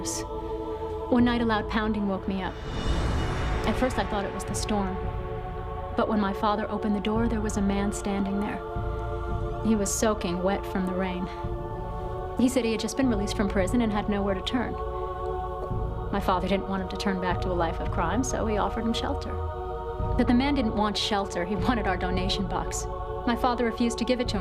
One night, a loud pounding woke me up. At first, I thought it was the storm. But when my father opened the door, there was a man standing there. He was soaking wet from the rain. He said he had just been released from prison and had nowhere to turn. My father didn't want him to turn back to a life of crime, so he offered him shelter. But the man didn't want shelter. He wanted our donation box. My father refused to give it to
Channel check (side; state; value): both; identical; correlation 1.00